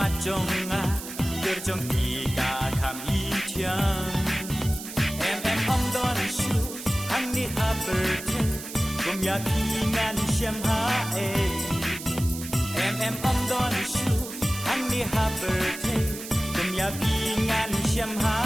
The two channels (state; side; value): noise; right; hiss, 11 dB below the sound